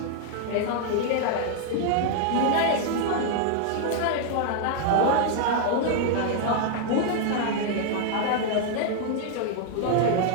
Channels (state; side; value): different; both; correlation -0.01